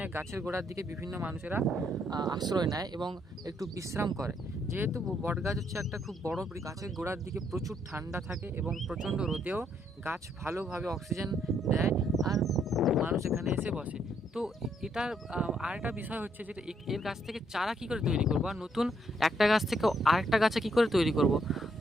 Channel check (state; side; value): normal; both; correlation 0.72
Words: গাছের গোড়ার দিকে বিভিন্ন মানুষেরা আশ্রয় নেয় এবং একটু বিশ্রাম করে। যেহেতু বট গাছ হচ্ছে একটা খুব বড় গাছের গোড়ার দিকে প্রচুর ঠান্ডা থাকে এবং প্রচণ্ড রোদেও গাছ ভালোভাবে অক্সিজেন দেয়, আর মানুষ এখানে এসে বসে। তো এটার আরেকটা বিষয় হচ্ছে যে এর গাছ থেকে চারা কী করে তৈরি করবো, আর নতুন একটা গাছ থেকে আরেকটা গাছে কী করে তৈরি করব।